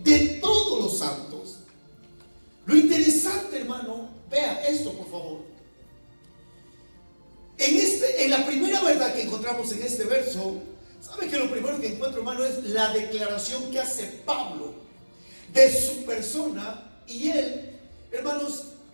de todos los santos. Lo interesante, hermano, vea esto, por favor. En la primera verdad que encontramos en este verso, ¿sabe que lo primero que encuentro, hermano, es la declaración que hace Pablo de su persona? Y él, hermanos,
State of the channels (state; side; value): inverted; both; correlation -1.00